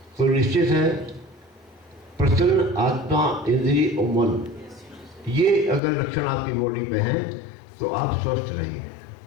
तो निश्चित है प्रसन्न आत्मा, इंद्रिय और मन, ये अगर लक्षण आपकी बॉडी पे हैं तो आप स्वस्थ रहेंगे।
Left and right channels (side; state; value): right; drops out; at 5.8 s